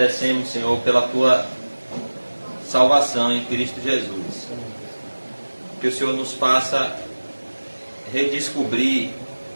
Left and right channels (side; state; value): both; inverted; correlation -1.00